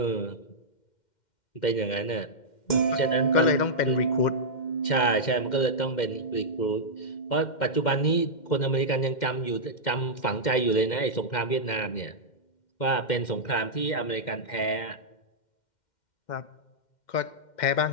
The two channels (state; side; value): late; right; 2.1 ms